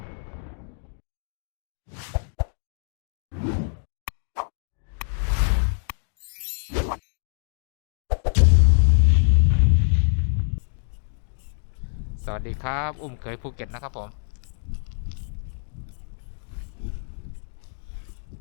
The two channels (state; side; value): silent; right; digital silence